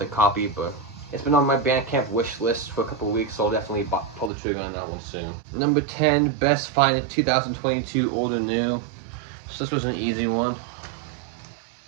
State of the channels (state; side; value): drops out; left; at 4.3 s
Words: copy, but it's been on my Bandcamp wish list for a couple of weeks, so I'll definitely pull the trigger on that one soon. Number 10, best find in 2022, old or new. So this was an easy one.